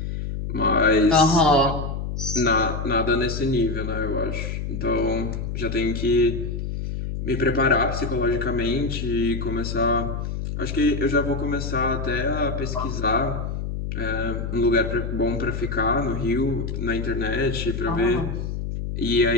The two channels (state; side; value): noise; left; hum, 4 dB below the sound